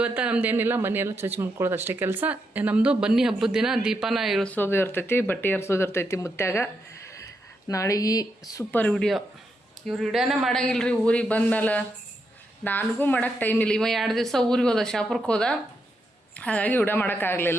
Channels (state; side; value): normal; both; correlation 0.82